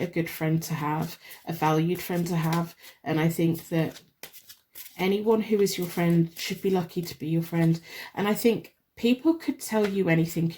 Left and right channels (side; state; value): both; identical; correlation 1.00